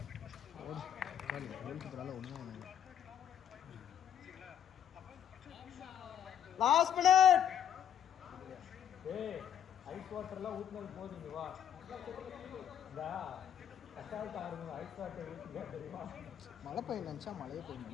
வீட்டு பசங்க ஒன்றும் சரிங்களா? அப்போ லாஸ்ட் மினிட். ஏய் ஐஸ் வாட்டர்லாம் ஊத்துனது போதுங்க வா. இந்த கஷ்டால் ஆடுங்க ஐஸ் வாட்டர் ஊற்றுங்க தெரியுமா? மழை பெய்ய நினச்சா மழையே பெய்ய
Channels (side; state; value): right; quieter; 9.5 dB